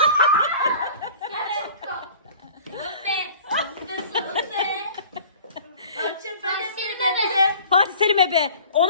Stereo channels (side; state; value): both; inverted; correlation -0.45